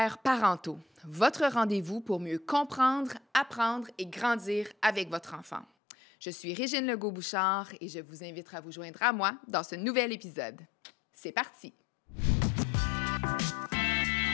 parentaux, votre rendez-vous pour mieux comprendre, apprendre et grandir avec votre enfant. Je suis Régine Legault-Bouchard et je vous invite à vous joindre à moi dans ce nouvel épisode. C'est parti!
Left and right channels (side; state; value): right; drops out; at 5.7 s